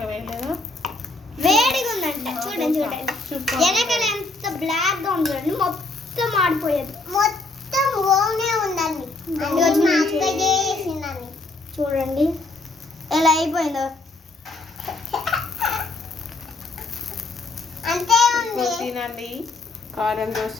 వేయలేదా? వేడిగా ఉందంట. చూడండి చూడండి, వెనకాల ఎంత బ్లాక్ గా ఉంది చూడండి. మొత్తం ఆడిపోయేది, మొత్తం ఓనే ఉందండి. చూడండి ఎలా అయిపోయిందో. అంతే ఉంది. తినండి కారం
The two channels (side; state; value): right; quieter; 3.4 dB